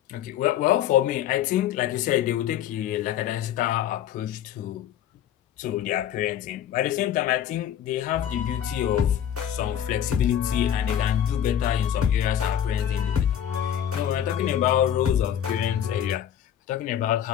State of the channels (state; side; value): quieter; right; 10.2 dB